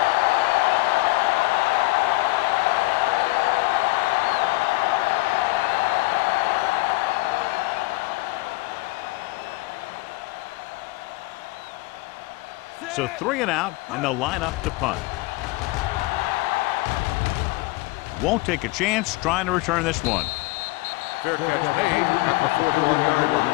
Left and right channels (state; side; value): quieter; right; 21.9 dB